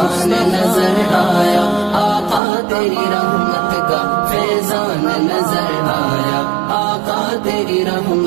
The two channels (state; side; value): drops out; left; at 2.4 s